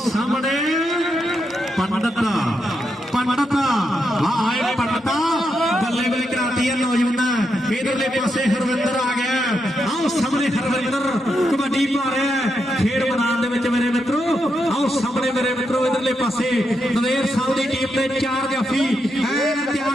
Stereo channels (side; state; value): both; normal; correlation 0.83